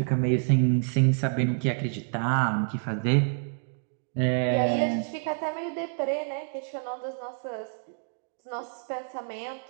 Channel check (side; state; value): left; silent; digital silence